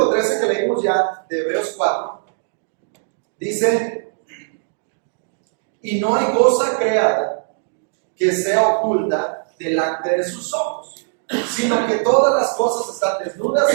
13 que leímos ya de Hebreos 4, dice: y no hay cosa creada que sea oculta delante de sus ojos, sino que todas las cosas están desnudas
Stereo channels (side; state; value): left; silent; digital silence